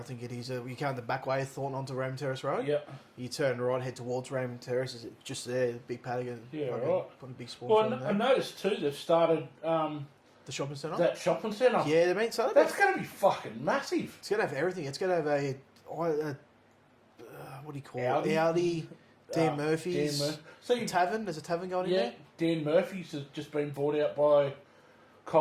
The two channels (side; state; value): both; identical; correlation 1.00